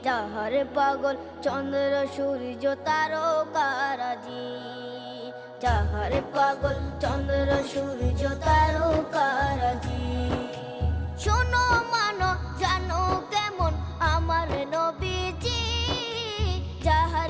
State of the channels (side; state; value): both; identical; correlation 1.00